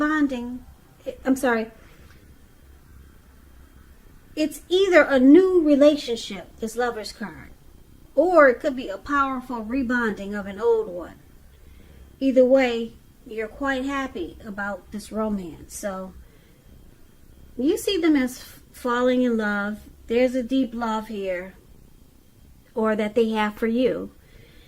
It's either a new relationship, this Lovers card, or it could be a powerful rebonding of an old one. either way, you're quite happy about this romance. So you see them as falling in love. There's a deep love here, or that they have for you.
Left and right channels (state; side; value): identical; both; correlation 1.00